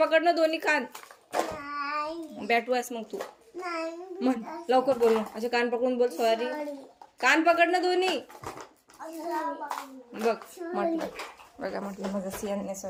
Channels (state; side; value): identical; both; correlation 1.00